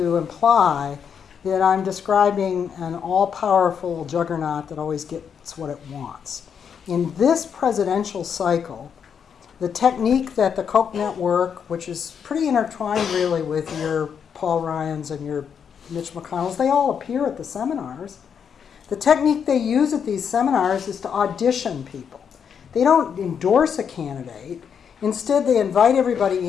imply that I'm describing an all-powerful juggernaut that always gets what it wants. In this presidential cycle, the technique that the Koch Network, which is pretty intertwined really with your Paul Ryans and your Mitch McConnells, they all appear at the seminars. The technique they use at these seminars is to audition people. They don't endorse a candidate. Instead, they invite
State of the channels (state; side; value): quieter; right; 7.3 dB